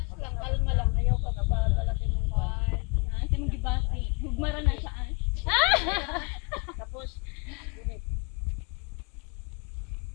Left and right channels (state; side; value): quieter; right; 30.8 dB